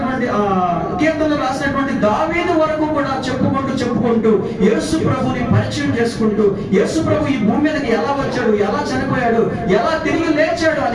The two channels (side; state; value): both; identical; correlation 1.00